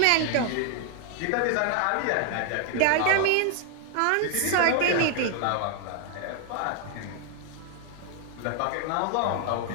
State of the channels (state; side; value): different; both; correlation 0.00